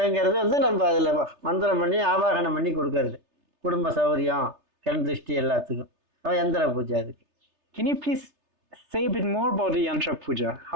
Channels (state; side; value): late; left; 3.3 ms